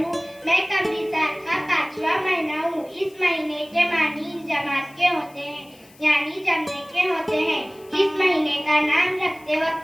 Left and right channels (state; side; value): noise; left; hiss, 26 dB below the sound